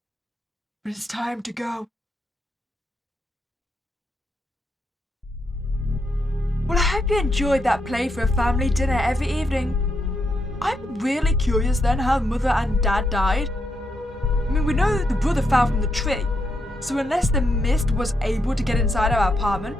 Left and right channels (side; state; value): both; normal; correlation 0.81